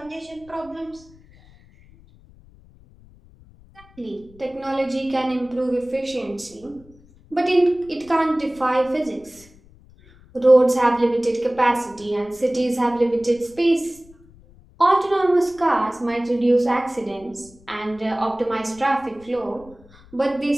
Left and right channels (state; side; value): noise; left; rumble, 25 dB below the sound